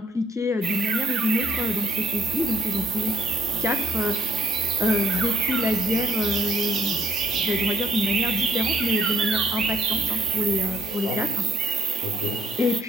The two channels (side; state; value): both; normal; correlation 0.66